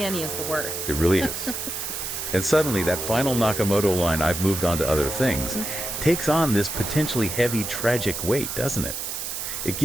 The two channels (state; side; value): noise; right; hiss, 5 dB below the sound